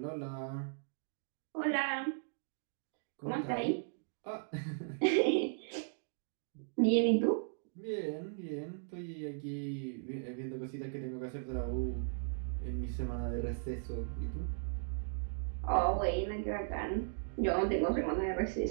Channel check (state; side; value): silent; left; digital silence